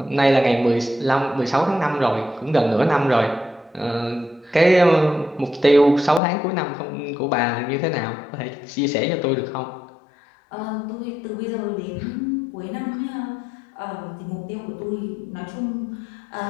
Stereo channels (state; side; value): drops out; right; at 6.2 s